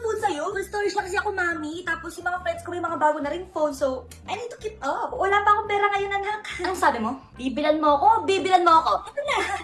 phone sa'yo? Full storage lang kasi ako, Mami. Tapos yung mga friends ko may mga bago na ring phone, so I need to keep up. Wala pa akong pera ngayon, anak. Anong sabi mo? Bibilan mo ako? Bibilan mo ako? Ito na,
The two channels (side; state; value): both; identical; correlation 1.00